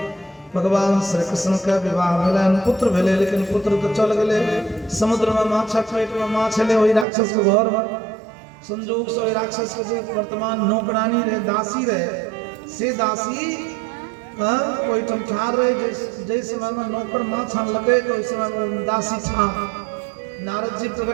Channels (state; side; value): drops out; left; at 7.1 s